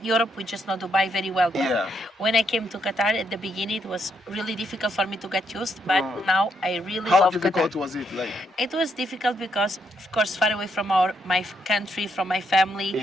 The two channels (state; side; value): normal; both; correlation 0.77